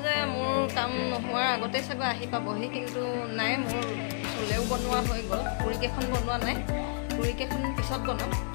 যে মোৰ কাম নোহোৱাৰ আগতে চাগৈ আহি পাবহি কিন্তু নাই মোৰ চলেও বনোৱা হৈ গ'ল পুৰিকেইখন বনোৱা নাই পুৰিকেইখন পিছত বনাম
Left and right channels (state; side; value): silent; right; digital silence